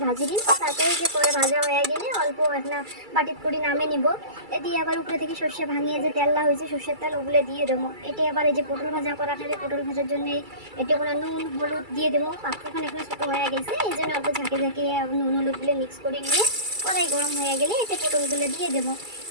ভাজি দিন। তারপরে যে করে ভাজা হয়ে গেলে অল্প একটা বাটির করে নামে নিব। এটি আবার উপরে থেকে সর্ষে ভাঙিয়ে যে তেললা হয়েছে সর্ষের তেল ওগুলো দিয়ে দেবো। এটি আবার এই যে পটল ভাজা করা থাকে পটল ভাজার জন্য এটি কোনো নুন হলুদ দিয়ে দেবো। পাত্রখানে এখানে ছোটো হয়ে গেছে এই জন্য অল্প ঝাঁকে ঝাঁকে নুন হলুদগুলো মিক্স করে নিয়ে কড়াই গরম হয়ে গেলে এতে পটলগুলো দিয়ে দেবো।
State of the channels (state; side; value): late; left; 2.3 ms